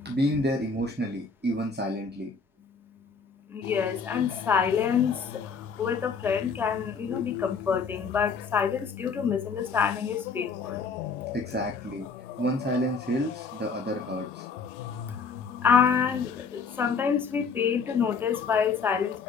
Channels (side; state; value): right; quieter; 5.2 dB